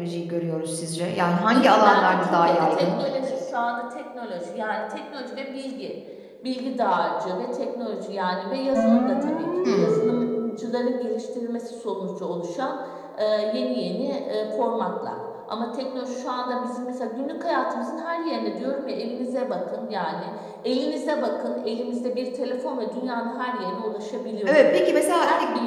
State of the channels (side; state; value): both; identical; correlation 1.00